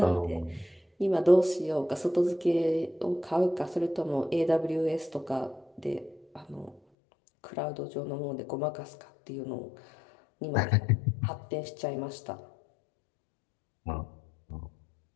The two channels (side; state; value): right; drops out; at 6.8 s